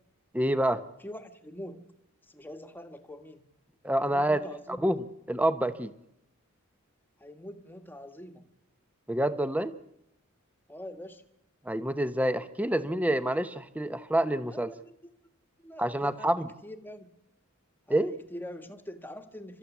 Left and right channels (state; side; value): normal; both; correlation 0.88